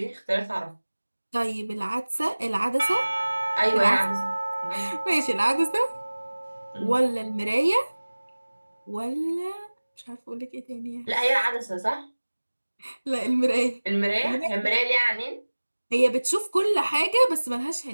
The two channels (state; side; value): inverted; both; correlation -1.00